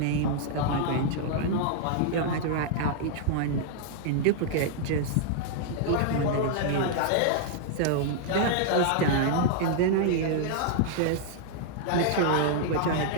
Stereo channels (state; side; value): different; both; correlation -0.01